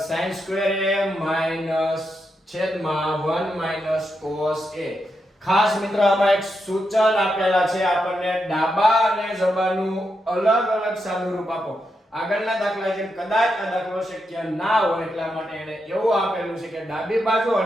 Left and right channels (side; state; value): both; normal; correlation 0.84